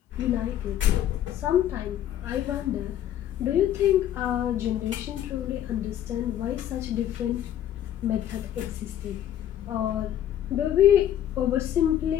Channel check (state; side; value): quieter; right; 11.2 dB